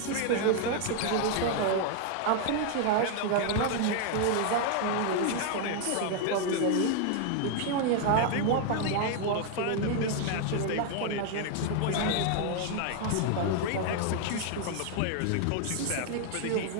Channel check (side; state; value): both; different; correlation 0.00